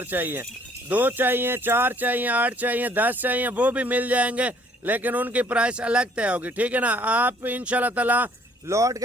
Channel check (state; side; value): normal; both; correlation 0.60